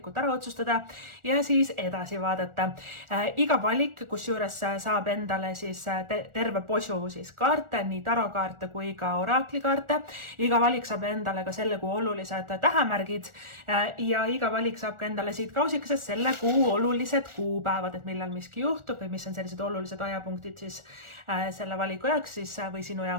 ära otsustada ja siis edasi vaadata. Iga valik, kus juures saab endale siis terve posu siis kaarte, nii tarokaarte kui ka oraklikaarte. Iga valik saab endale ka selle kuu olulised tähemärgid ja iga valik saab ka endale siit kausikesest selle kuu olulised kuupäevad, et millal miski juhtub või mis on sellised olulised ajapunktid siis selle valiku jaoks siis, või sinu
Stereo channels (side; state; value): left; late; 1.4 ms